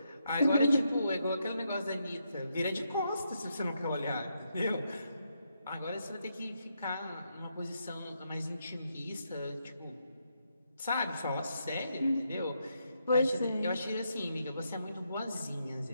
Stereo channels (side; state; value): both; inverted; correlation -0.80